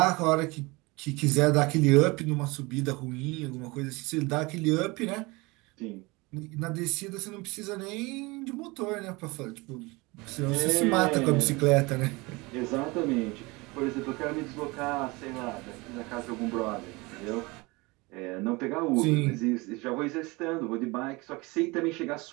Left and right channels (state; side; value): quieter; left; 24.4 dB